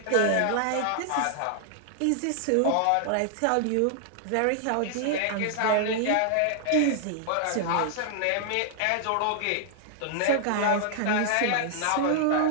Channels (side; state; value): both; different; correlation 0.00